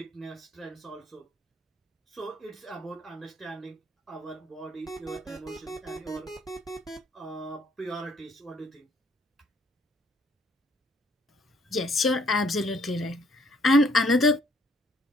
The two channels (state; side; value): normal; both; correlation 0.64